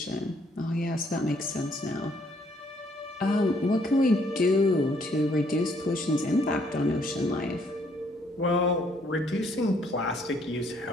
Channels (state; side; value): normal; both; correlation 0.67